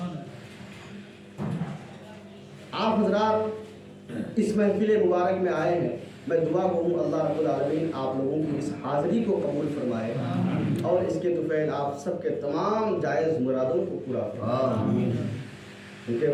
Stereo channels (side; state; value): both; identical; correlation 1.00